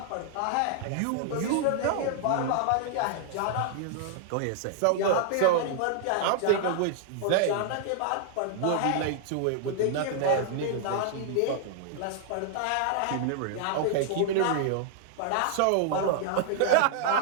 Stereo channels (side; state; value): both; different; correlation -0.01